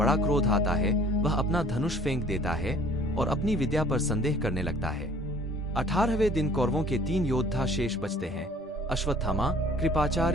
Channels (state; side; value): normal; both; correlation 0.53